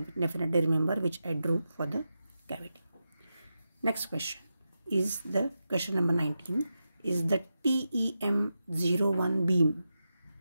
remember, which I drew for the cavity. Next question is the question number 19 is the TEM01 beam.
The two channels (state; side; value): inverted; both; correlation -0.89